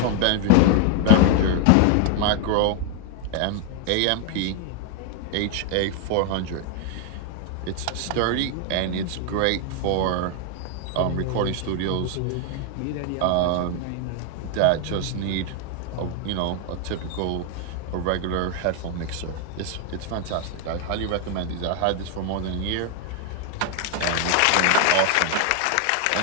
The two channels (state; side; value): different; both; correlation 0.00